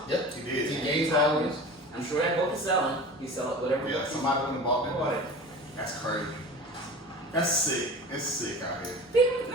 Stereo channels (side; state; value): both; normal; correlation 0.36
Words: Yep. He did. He gained followers. I'm sure that book is selling. He sell it whatever. Yeah, somebody went and bought that. That's crazy. That's sick. It's sick out here.